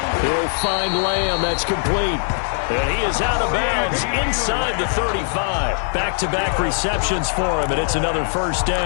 He'll find Lamb. That's complete. And he is out of bounds inside the 35. Back-to-back receptions for him, and it's another first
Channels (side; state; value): right; silent; digital silence